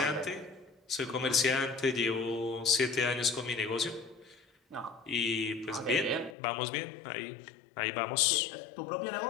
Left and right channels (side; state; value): right; drops out; at 6.4 s